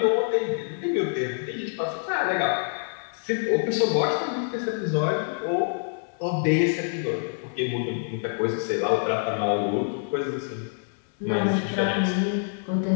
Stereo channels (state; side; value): silent; right; 61 dB below the other